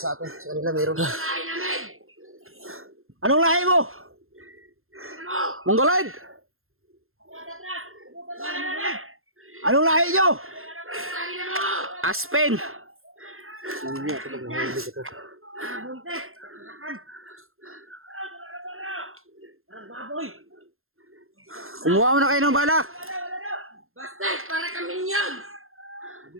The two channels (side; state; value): left; late; 0.61 ms